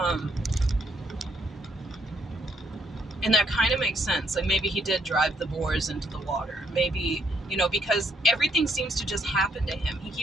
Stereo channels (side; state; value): both; normal; correlation 0.72